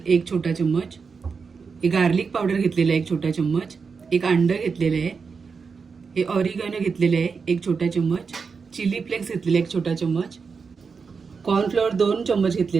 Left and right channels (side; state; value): left; quieter; 5.3 dB